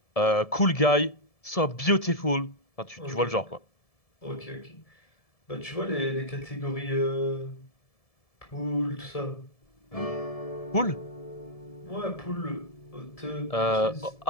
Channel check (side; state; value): right; late; 1.7 ms